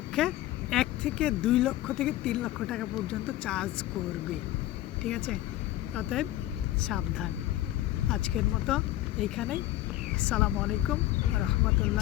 1 থেকে 2 লক্ষ থেকে 3 লক্ষ টাকা পর্যন্ত চার্জ করবে, ঠিক আছে? অতএব সাবধান। আজকের মতো এইখানেই। আসসালামু আলাইকুম ওয়া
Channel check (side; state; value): right; quieter; 15.1 dB